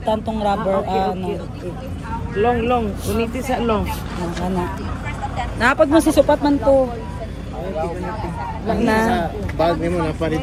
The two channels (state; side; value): identical; both; correlation 1.00